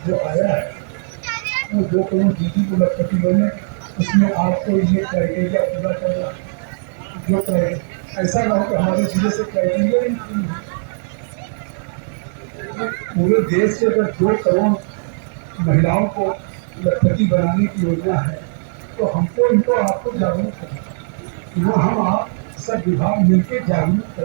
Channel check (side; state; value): left; silent; 67 dB below the other